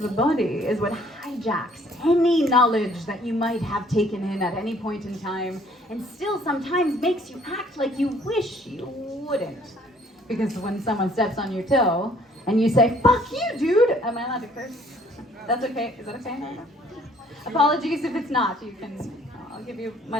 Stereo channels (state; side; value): normal; both; correlation 0.60